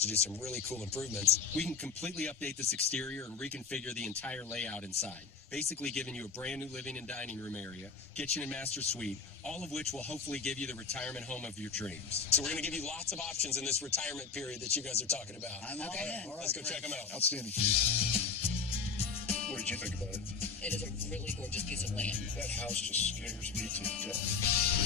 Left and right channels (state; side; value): quieter; right; 5.3 dB